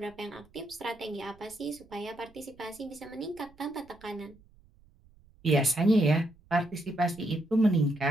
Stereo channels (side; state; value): right; noise; rumble, 27 dB below the sound